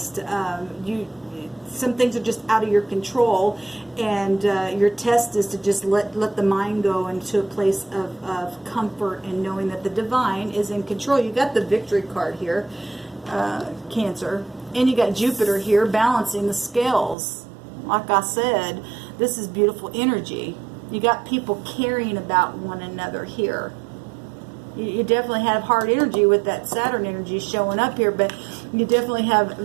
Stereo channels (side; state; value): left; drops out; at 17.2 s